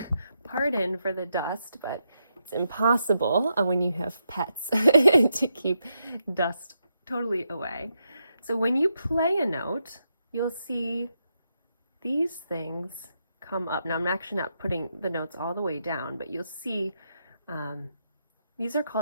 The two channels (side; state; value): both; inverted; correlation -0.83